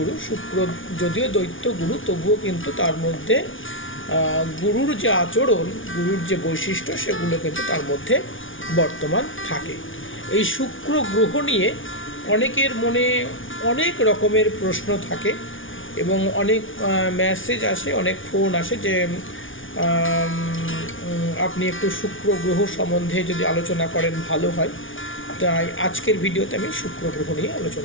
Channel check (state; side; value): late; right; 0.57 ms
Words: শুক্র যদিও দৈত্য গুরু, তবুও কিন্তু তার মধ্যে গুরুর যে আচরণ, গুরুর যে বৈশিষ্ট্য, সেগুলো কিন্তু তার মধ্যে বর্তমান থাকে। এই শুক্র গ্রহ নিয়ে অনেকের মনে অনেক রকমের প্রশ্ন থাকে এবং অনেক মেসেজ আসে, অনেক ফোন আসে যে আপনি একটু শুক্র গ্রহ সম্বন্ধে যদি আলোচনা করেন ভালো হয়। তাই আজকের ভিডিওতে আমি শুক্র গ্রহ নিয়ে